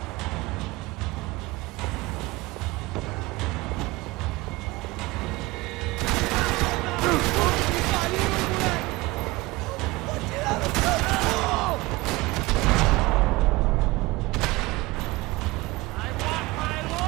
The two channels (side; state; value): left; quieter; 21.4 dB